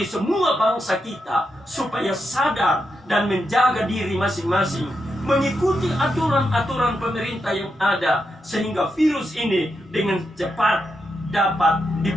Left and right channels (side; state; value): both; normal; correlation 0.85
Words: semua bangsa kita supaya sadar dan menjaga diri masing-masing, mengikuti aturan-aturan pemerintah yang ada, sehingga virus ini dengan cepat dapat